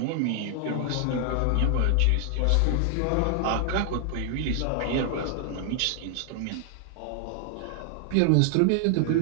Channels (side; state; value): both; different; correlation 0.00